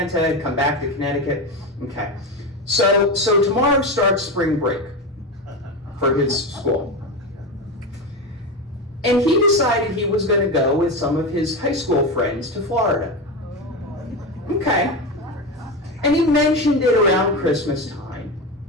and come back to Connecticut. Okay. So tomorrow starts spring break for his school. And he decided he was going to go with some of his high school friends to Florida. Okay. And he mentioned it around Christmas time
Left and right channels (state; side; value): normal; both; correlation 0.19